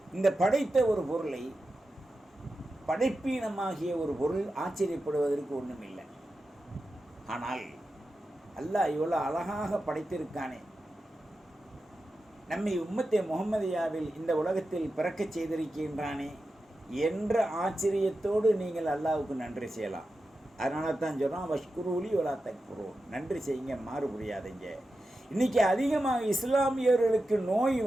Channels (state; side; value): normal; both; correlation 0.91